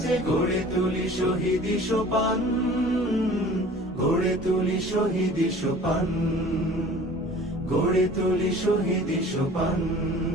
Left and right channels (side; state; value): both; normal; correlation 0.46